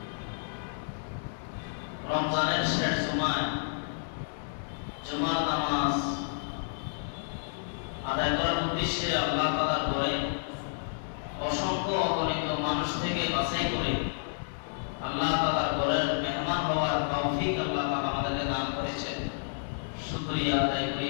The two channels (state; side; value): silent; right; digital silence